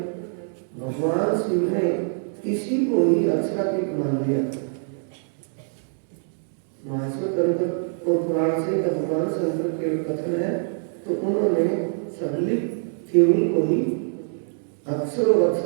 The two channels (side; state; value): left; silent; 62 dB below the other